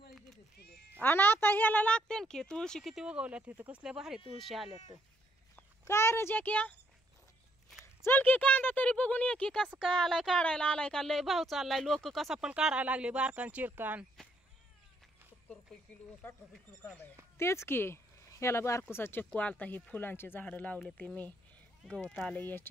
आणि आता ह्याला लागते की तुळशी किती उगवल्यात तिथं. कसल्या भारी तुळशी आल्यात. काय रे जॅक्या चल की कांदा तरी बघून ये की कसं काय आलाय, काढायला आलाय का. लय भाव चाललाय, लोक कसा पण काढायला लागले बारकान चिरकान. 70 रुपये किलो 60 रुपये किलो कांदा आहे. तेच की ह्याला बारकुसा चक्कू आलता. ही फुलांची झाडं लावले ते मी. गवत आलंय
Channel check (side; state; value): both; normal; correlation 0.70